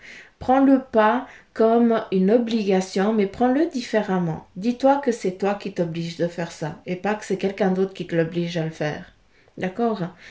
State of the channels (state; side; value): identical; both; correlation 1.00